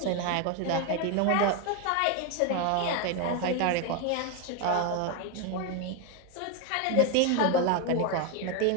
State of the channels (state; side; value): different; both; correlation 0.02